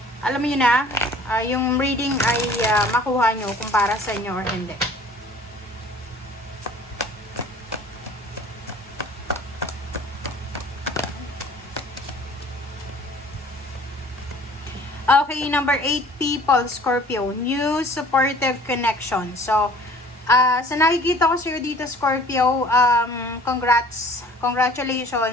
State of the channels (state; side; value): normal; both; correlation 0.50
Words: alam niyo na yung reading ay makuha nyo kung para sa inyo or hindi. Okay, number 8 people, Scorpio, new supportive connection. So, sa nakikita ko sa'yo dito, Scorpio,